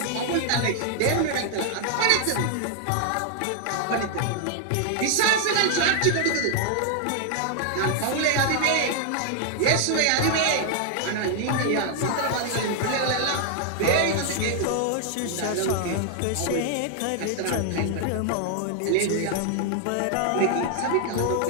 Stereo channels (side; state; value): both; different; correlation 0.00